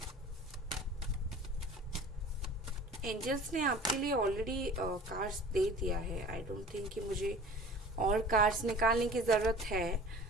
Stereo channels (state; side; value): normal; both; correlation 0.43